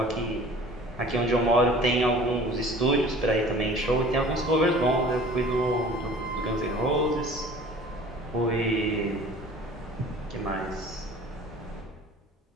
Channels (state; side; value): normal; both; correlation 0.46